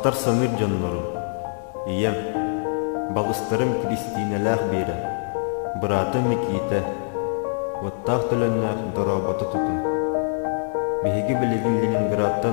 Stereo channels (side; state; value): right; silent; digital silence